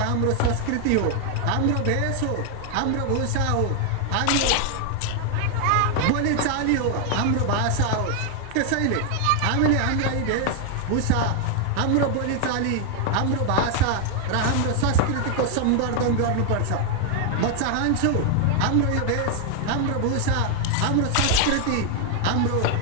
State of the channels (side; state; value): both; different; correlation 0.00